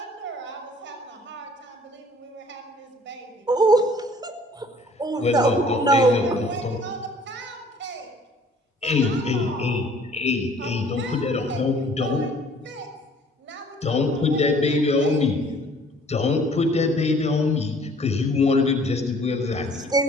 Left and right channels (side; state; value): both; normal; correlation 0.55